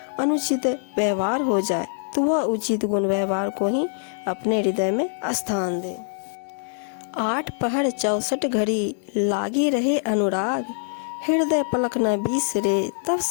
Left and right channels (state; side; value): silent; right; 63 dB below the other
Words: अनुचित व्यवहार हो जाए, तो वह उचित गुण व्यवहार को ही अपने हृदय में स्थान दे। 8 पहर 64 घड़ी, लागी रहे अनुराग, हृदय पलक न बिसरे, तब